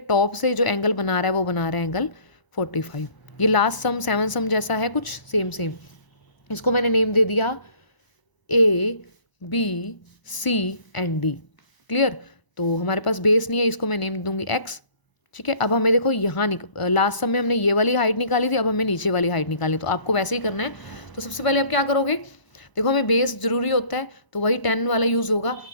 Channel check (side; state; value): right; late; 1.0 ms